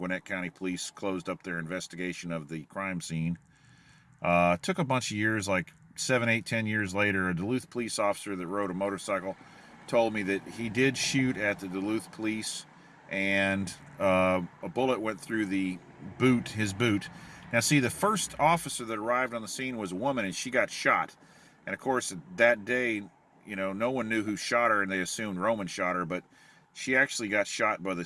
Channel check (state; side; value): identical; both; correlation 1.00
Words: County Police closed up their investigation of the crime scene. Took a bunch of years, like 7, 8, 10 years later, a Duluth police officer that rode a motorcycle told me that he did shoot at the Duluth Police, and a bullet went through his boot. Now, see, the first officer that arrived on the scene was a woman, and she got shot. And, of course, that day, no one knew who shot her, and they assumed Roman shot her, but she actually got shot by the